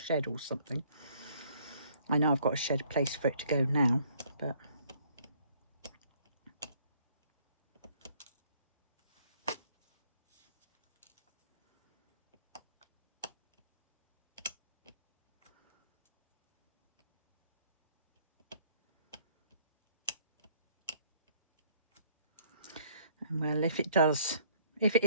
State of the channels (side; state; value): both; inverted; correlation -0.61